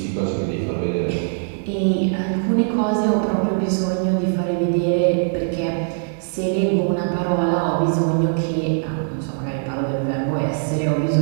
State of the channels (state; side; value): silent; left; digital silence